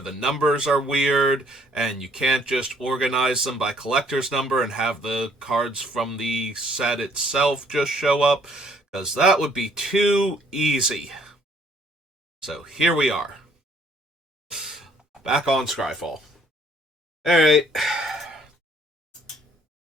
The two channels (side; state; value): both; normal; correlation 0.63